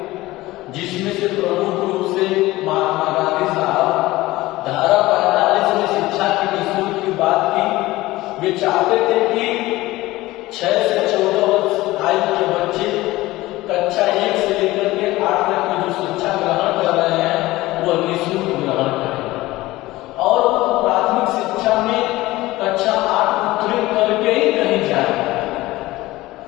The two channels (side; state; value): right; quieter; 18.4 dB